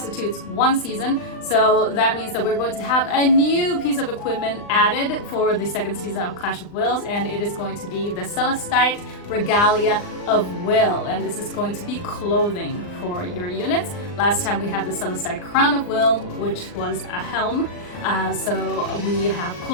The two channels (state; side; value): late; right; 39 ms